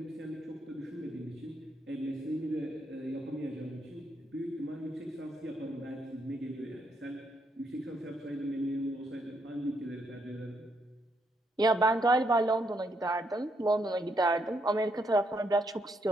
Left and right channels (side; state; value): both; normal; correlation 0.76